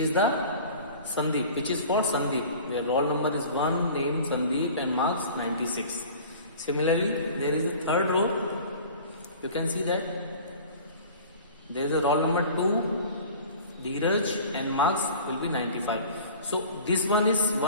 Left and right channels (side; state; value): both; inverted; correlation -0.43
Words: the Sandeep, which is for Sandeep, where roll number is 1, name Sandeep and marks 96. Similarly, there is a third row. You can see that there is a roll number 2, Dheeraj, and marks will be 95. So this one is